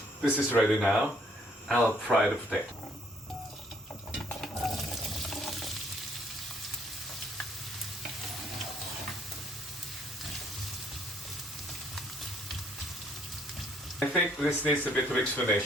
This is ready now. I'll fry the potato. I think this needs a bit of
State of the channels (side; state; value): both; normal; correlation 0.65